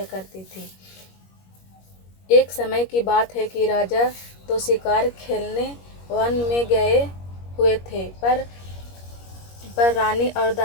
करती थी। एक समय की बात है कि राजा तो शिकार खेलने वन में गए हुए थे, पर रानी और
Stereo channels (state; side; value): late; right; 21 ms